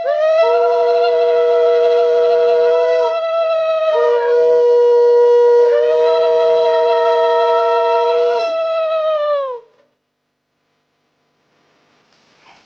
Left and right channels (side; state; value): both; identical; correlation 1.00